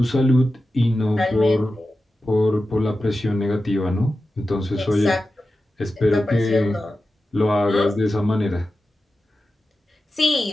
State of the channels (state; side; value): normal; both; correlation 0.93